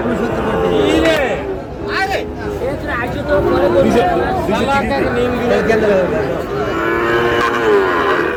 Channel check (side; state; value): both; identical; correlation 1.00